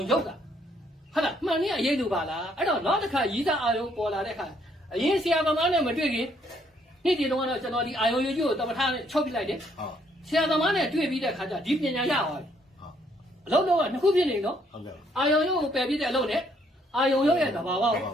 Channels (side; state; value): both; normal; correlation 0.69